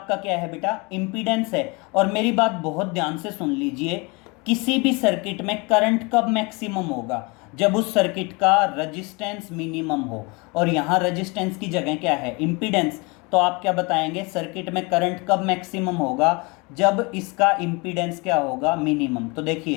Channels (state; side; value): quieter; right; 28.1 dB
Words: क्या है बेटा? इम्पीडेंस है। और मेरी बात बहुत ध्यान से सुन लीजिए, किसी भी सर्किट में करंट कब मैक्सिमम होगा? जब उस सर्किट का रेजिस्टेंस मिनिमम हो। और यहाँ रेजिस्टेंस की जगह क्या है? इम्पीडेंस। तो आप क्या बताएंगे? सर्किट में करंट कब मैक्सिमम होगा? जब इसका इम्पीडेंस क्या होगा? मिनिमम। तो